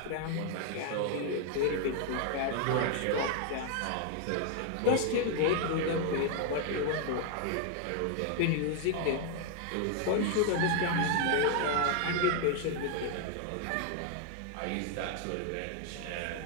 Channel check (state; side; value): different; both; correlation 0.00